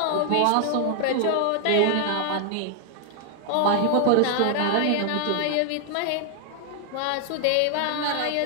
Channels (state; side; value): different; both; correlation 0.00